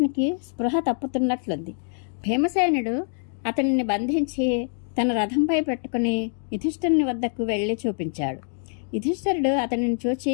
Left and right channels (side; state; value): right; silent; 57 dB below the other